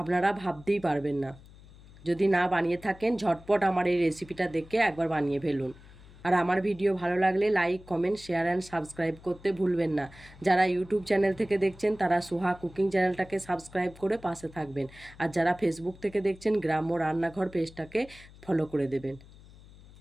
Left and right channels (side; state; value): left; noise; hum, 21 dB below the sound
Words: আপনারা ভাবতেই পারবেন না। যদি না বানিয়ে থাকেন ঝটপট আমার এই রেসিপিটা দেখে একবার বানিয়ে ফেলুন। আর আমার ভিডিও ভালো লাগলে like, comment, share and subscribe করতে ভুলবেন না। যারা ইউটিউব চ্যানেল থেকে দেখছেন তারা সুহা কুকিং চ্যানেলটাকে সাবস্ক্রাইব করে পাশে থাকবেন। আর যারা ফেসবুক থেকে দেখছেন গ্রাম্য রান্নাঘর পেজটাকে ফলো করে দেবেন।